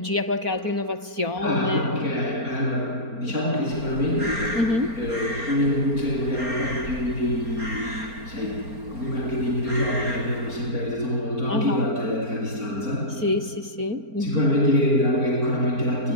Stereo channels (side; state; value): left; late; 4.4 ms